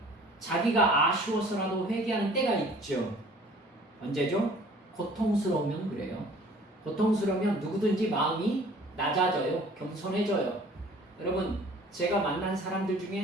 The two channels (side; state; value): both; normal; correlation 0.51